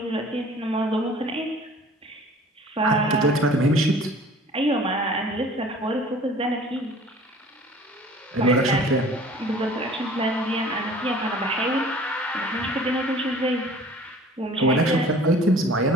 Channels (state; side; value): normal; both; correlation 0.48